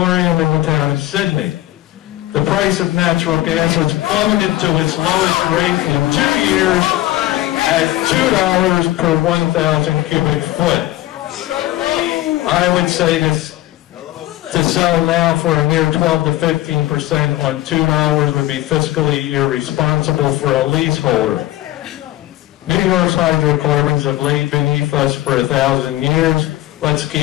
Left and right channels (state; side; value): quieter; right; 16.0 dB